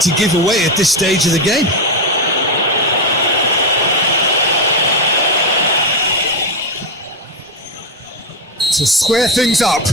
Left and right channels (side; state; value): both; normal; correlation 0.10